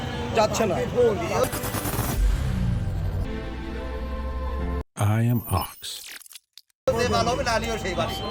যাচ্ছে না। I am Ox. ভালো হবে, লালিও সেই বাড়ি।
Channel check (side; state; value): both; identical; correlation 1.00